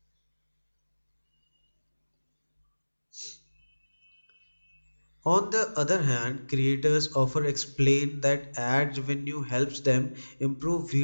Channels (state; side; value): inverted; both; correlation -1.00